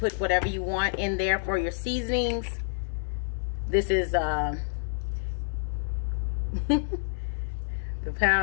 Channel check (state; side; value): silent; right; 59 dB below the other